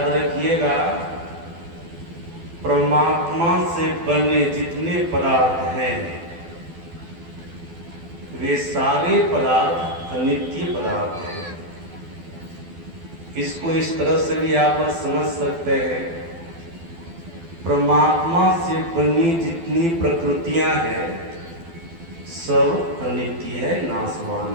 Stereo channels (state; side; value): late; left; 12 ms